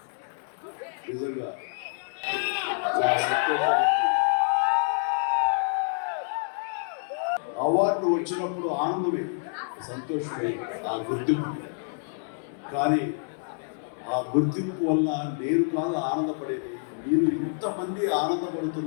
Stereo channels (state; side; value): silent; right; 60 dB below the other